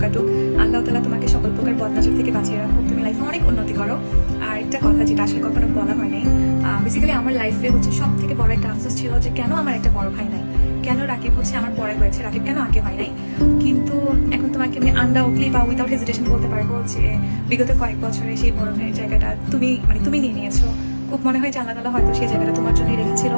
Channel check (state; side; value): inverted; both; correlation -1.00